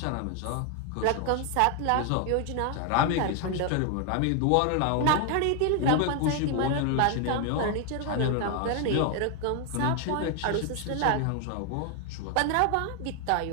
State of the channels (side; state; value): both; different; correlation 0.00